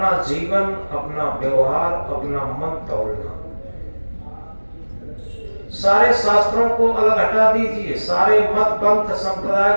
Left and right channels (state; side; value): inverted; both; correlation -1.00